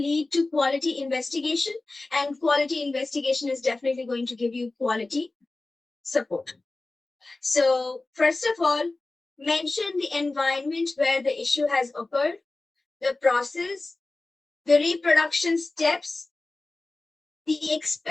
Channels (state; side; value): quieter; right; 3.2 dB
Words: to quality investigation, and quality investigation is definitely going to give you quality support. So first of all, mention the environment where the issue has occurred, the process, the reproduction steps, the